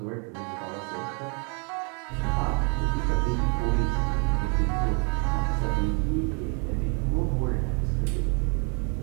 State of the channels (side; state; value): left; quieter; 36.9 dB